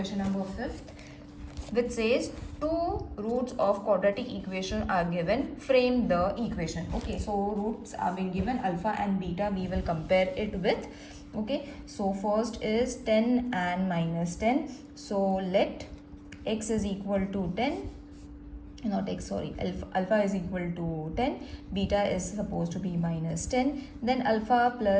number 5th, which says two roots of quadratic equation are given. Frame the equation. Okay, so roots are being given, alpha and beta. We will compare it with. Okay, so first is 10 and minus 10. So let x is equal to 10, not x, sorry, alpha is equal to 10, beta is supposed to be minus 10. Then alpha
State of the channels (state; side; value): identical; both; correlation 1.00